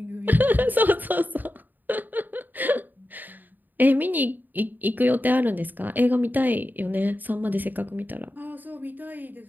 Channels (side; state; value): left; late; 0.088 ms